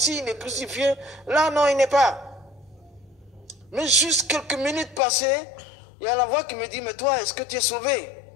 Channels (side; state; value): right; drops out; at 5.0 s